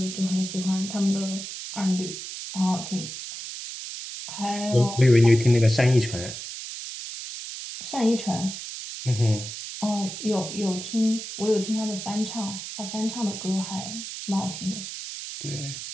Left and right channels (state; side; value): noise; right; hiss, 8 dB below the sound